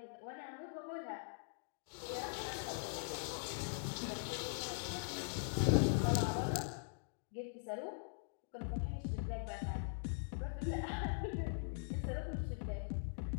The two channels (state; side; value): silent; right; digital silence